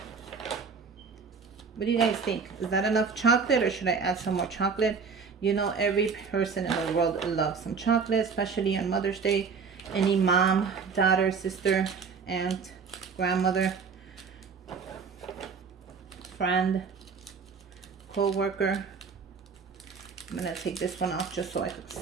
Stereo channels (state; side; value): quieter; left; 5.5 dB